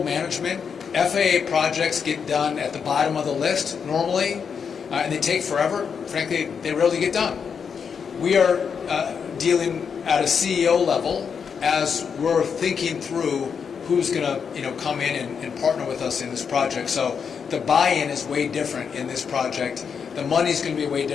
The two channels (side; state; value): right; quieter; 6.5 dB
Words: management. FAA projects get done at the bottom of the list normally, and they take forever. Frankly, they rarely get done. We are dealing at a CEO level as we're thinking through who's going to come in and partner with us in this project. So the buy-in is way different in this project. The money's going to be way